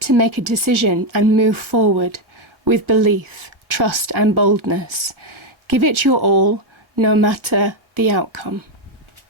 to make a decision and move forward with belief, trust and boldness. Give it your all, no matter the outcome.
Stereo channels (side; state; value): left; late; 1.5 ms